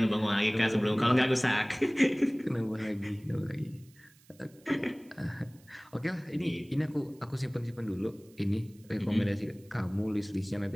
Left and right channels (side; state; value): right; noise; hiss, 29 dB below the sound